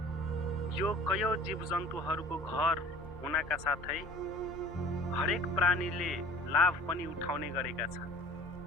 यो कयौं जीवजन्तुहरूको घर हुनका साथै हरेक प्राणीले लाभ पनि उठाउने गरेका छन्।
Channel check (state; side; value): normal; both; correlation 0.45